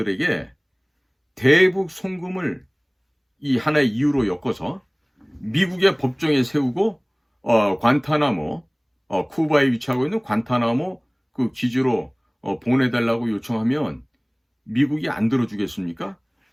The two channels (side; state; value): both; identical; correlation 1.00